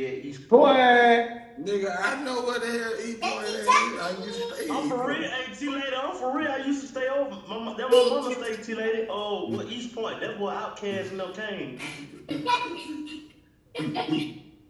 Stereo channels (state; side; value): identical; both; correlation 1.00